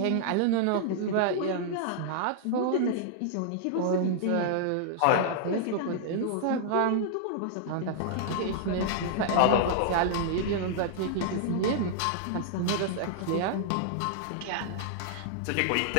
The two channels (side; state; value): both; different; correlation -0.01